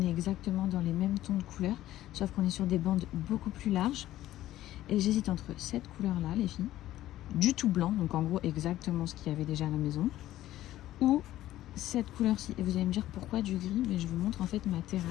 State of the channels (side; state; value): right; quieter; 14.3 dB